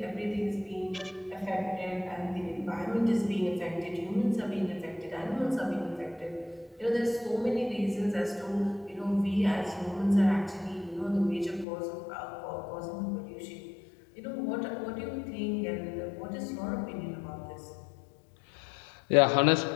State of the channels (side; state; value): right; drops out; at 11.7 s